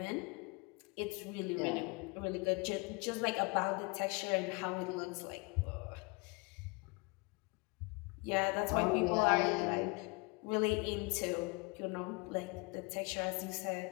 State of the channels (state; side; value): quieter; right; 29.2 dB